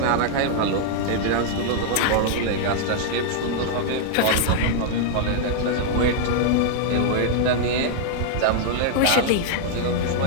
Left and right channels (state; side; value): different; both; correlation -0.01